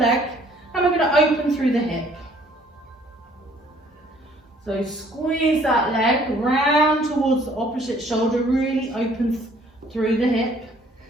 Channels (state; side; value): normal; both; correlation 0.59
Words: and we're going to open through the hip. So squeeze that leg round towards the opposite shoulder, really open through the hip.